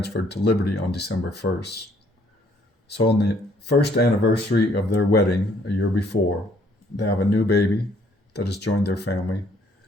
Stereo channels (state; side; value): normal; both; correlation 0.64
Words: to Liberty on December 1st. So on the first anniversary of their wedding, a year before, they have a new baby that has joined their family,